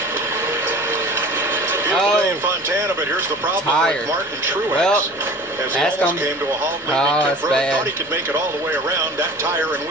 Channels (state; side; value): normal; both; correlation 0.41